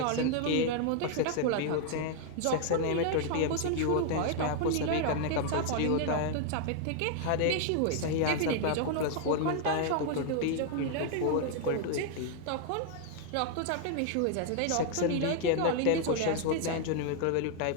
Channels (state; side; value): different; both; correlation 0.00